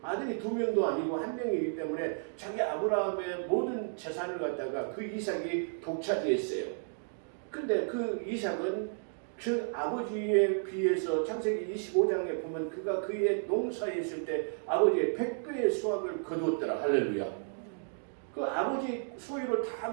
아들이 두 명도 아니고 한 명이기 때문에 자기 아브라함의 모든 재산을 갖다가 그 이삭이 독차지했어요. 근데 그 이삭은 그 아버지에 비해서 창세기 25장에 보면 그가 그의 농사에 있을 때 아버지의 100배의 수확을 거두었더라. 할렐루야. 그 아버지 소유를 다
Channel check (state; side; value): silent; left; digital silence